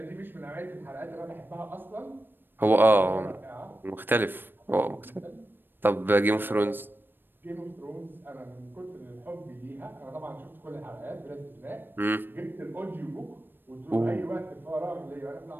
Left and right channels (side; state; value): left; late; 0.096 ms